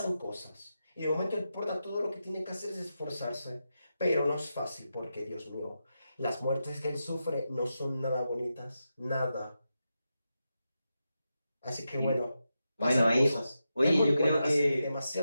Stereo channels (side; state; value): both; inverted; correlation -0.88